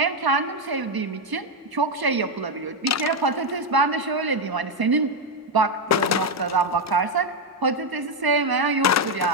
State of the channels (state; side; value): normal; both; correlation 0.05